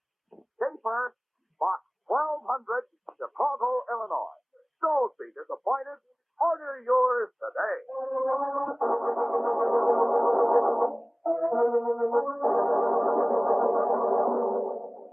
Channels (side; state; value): both; identical; correlation 1.00